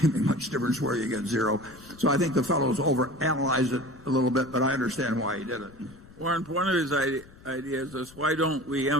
make much difference where you get zero. So I think the fellow's overanalyzed it a little bit, but I understand why he did it. Warren, one of his ideas is, why don't we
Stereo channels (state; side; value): noise; left; rumble, 22 dB below the sound